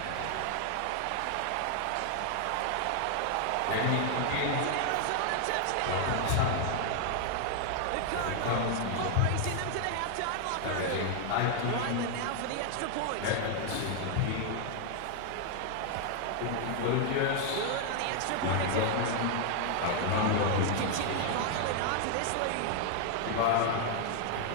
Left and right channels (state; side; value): different; both; correlation 0.00